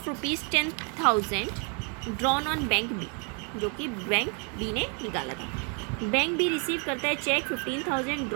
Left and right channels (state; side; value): quieter; left; 37.6 dB